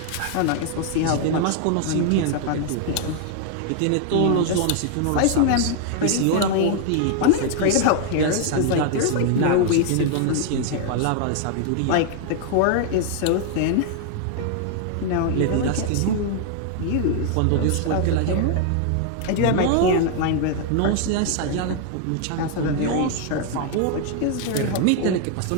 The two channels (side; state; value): both; different; correlation 0.00